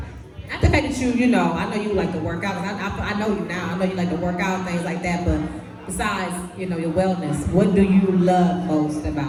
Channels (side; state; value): both; identical; correlation 1.00